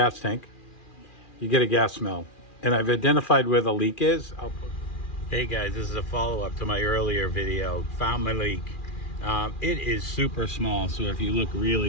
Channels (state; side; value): late; right; 2.4 ms